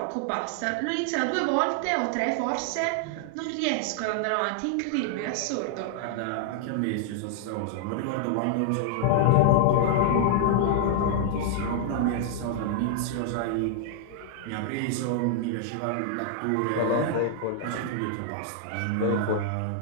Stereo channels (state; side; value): different; both; correlation -0.01